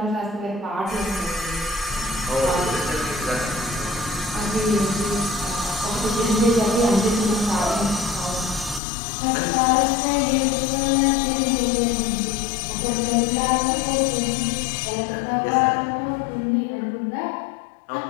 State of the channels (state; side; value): drops out; right; at 8.8 s